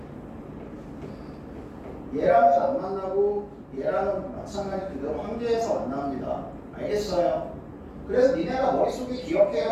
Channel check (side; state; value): both; identical; correlation 1.00